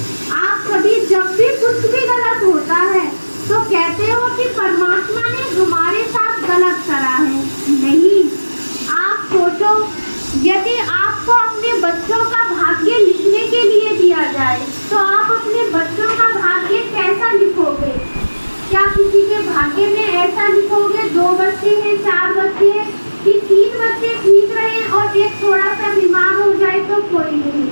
आप सभी जब भी कुछ भी गलत होता है तो कहते हो कि परमात्मा ने हमारे साथ गलत करा है। नहीं, आप सोचो, यदि आपको अपने बच्चों का भाग्य लिखने के लिए दिया जाए तो आप अपने बच्चों का भाग्य कैसा लिखोगे? क्या किसी के भाग्य में ऐसा लिखोगे 2 बच्चे हैं, 4 बच्चे हैं, कि 3 बच्चे ठीक रहे और एक थोड़ा सा बीमार हो जाए तो कोई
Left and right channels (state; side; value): inverted; both; correlation -1.00